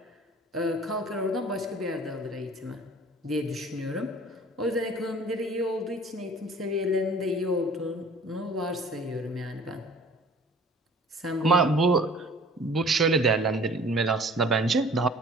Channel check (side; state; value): both; normal; correlation 0.49